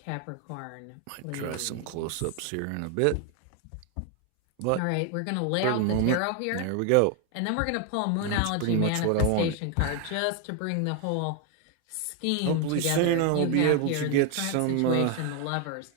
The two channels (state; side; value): different; both; correlation 0.01